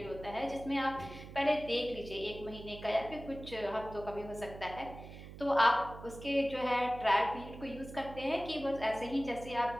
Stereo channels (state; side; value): noise; right; hum, 14 dB below the sound